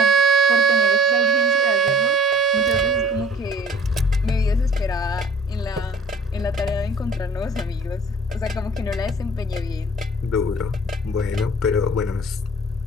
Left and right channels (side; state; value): both; normal; correlation 0.49